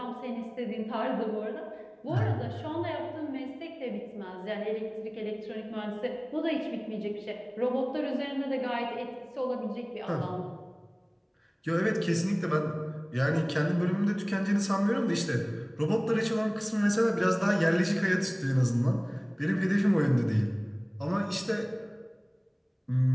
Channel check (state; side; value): identical; both; correlation 1.00